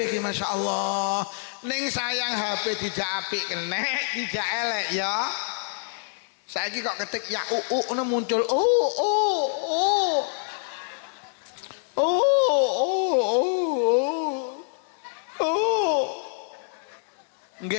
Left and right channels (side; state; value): right; silent; digital silence